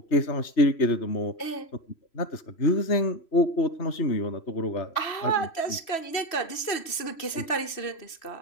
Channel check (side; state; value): right; late; 3.1 ms